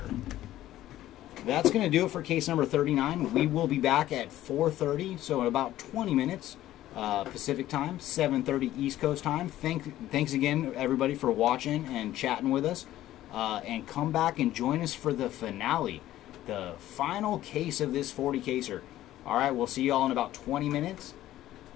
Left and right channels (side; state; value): right; quieter; 14.0 dB